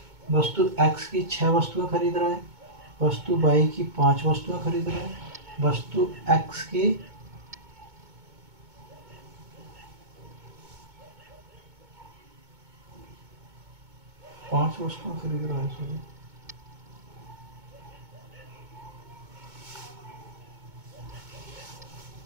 वस्तु x की 6 वस्तुएं खरीद रहा है, वस्तु y की 5 वस्तुएं खरीद रहा है, वस्तु x की 5 वस्तुएं खरीद रहा है, सॉरी,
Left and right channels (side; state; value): left; late; 2.2 ms